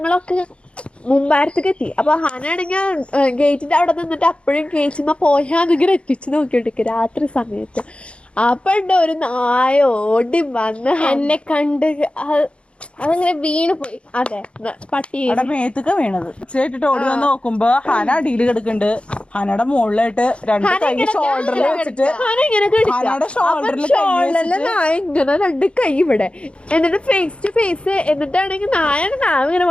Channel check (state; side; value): late; right; 0.059 ms